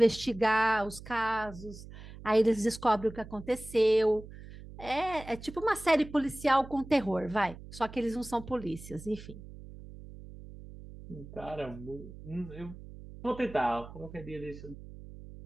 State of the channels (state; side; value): noise; right; hum, 15 dB below the sound